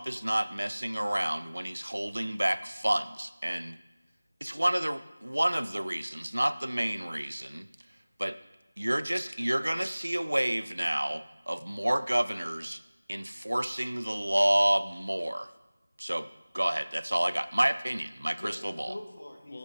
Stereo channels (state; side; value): inverted; both; correlation -1.00